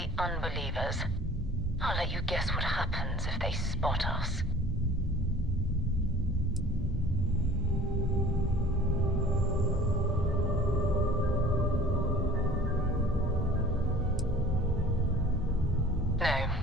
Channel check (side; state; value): both; normal; correlation 0.47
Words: unbelievers. I'll let you guess what happens if they spot us.